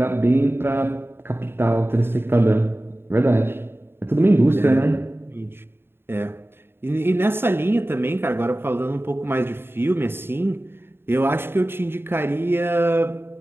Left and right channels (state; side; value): late; left; 0.11 ms